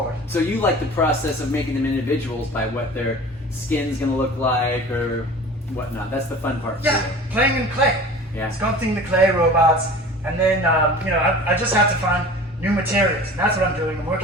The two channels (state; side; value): normal; both; correlation 0.40